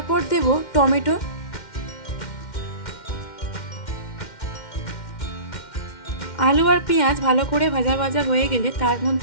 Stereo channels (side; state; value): right; late; 2.1 ms